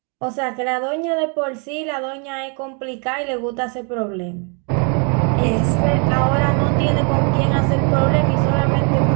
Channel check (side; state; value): left; quieter; 37.4 dB